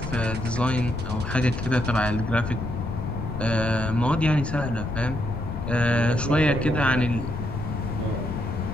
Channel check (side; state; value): left; noise; rumble, 7 dB below the sound